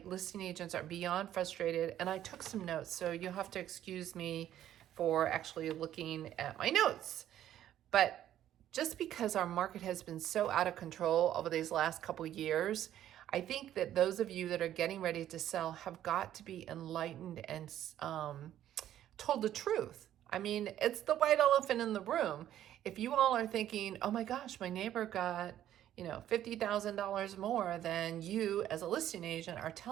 listing agents are beyond frustrated. And I took some notes, so you'll have to excuse me for actually looking at my notes. But just because our market has been so out of control over these last couple years, I think that those of you that are getting ready to sell have got to be enlightened and told the truth. I mean, it's the white elephant in the room. If you all are thinking, oh my gosh, my neighbor got, $50,000 more than you as a listing agent are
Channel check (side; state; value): left; quieter; 11.8 dB